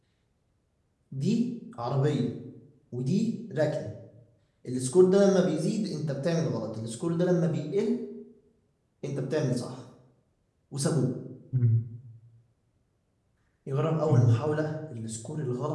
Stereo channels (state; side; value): identical; both; correlation 1.00